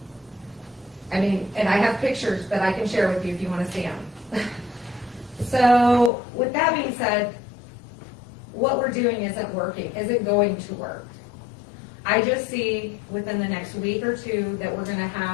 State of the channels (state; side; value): drops out; right; at 6.1 s